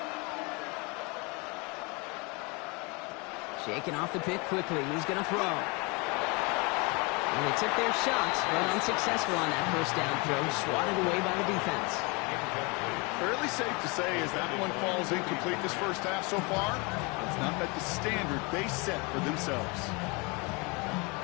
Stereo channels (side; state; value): right; quieter; 29.2 dB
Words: Shaking off the pick quickly. He's going to throw. And they took their shots, but unsuccessful on that first down throw. Swatted away by the defense. Fairly safe to say as that one falls incomplete this first half so far, it's not met the standard they set for themselves.